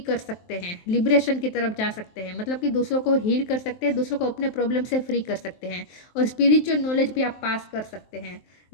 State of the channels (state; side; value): late; right; 23 ms